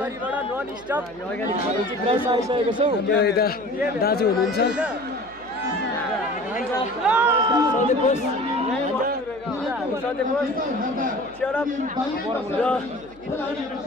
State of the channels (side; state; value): right; noise; hum, 24 dB below the sound